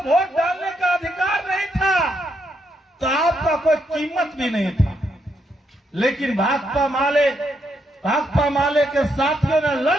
वोट डालने का अधिकार नहीं था, तो आपका कोई कीमत भी नहीं था। लेकिन भाकपा माले के साथियों ने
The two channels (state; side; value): normal; both; correlation 0.78